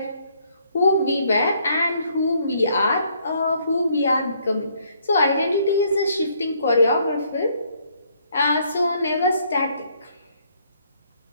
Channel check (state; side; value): inverted; both; correlation -0.67